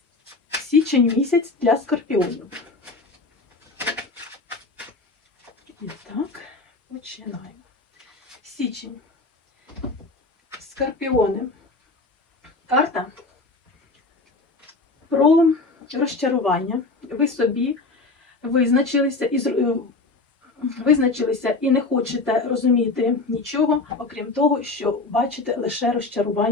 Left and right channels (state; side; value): quieter; right; 3.5 dB